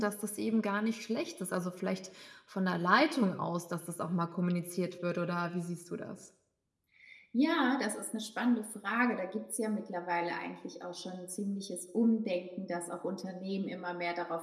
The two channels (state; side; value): identical; both; correlation 1.00